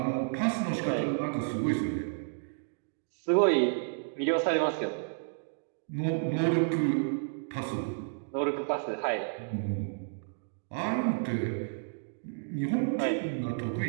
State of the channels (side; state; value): left; silent; digital silence